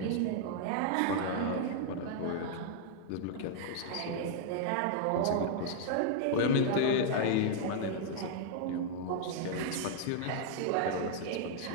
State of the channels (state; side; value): different; both; correlation -0.01